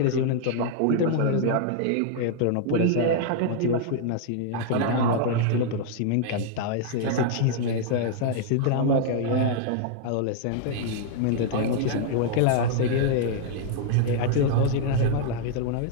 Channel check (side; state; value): both; different; correlation -0.01